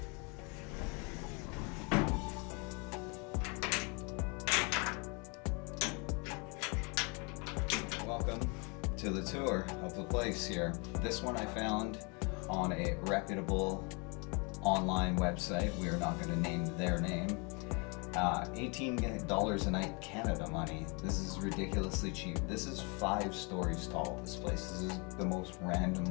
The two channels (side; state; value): right; quieter; 32.3 dB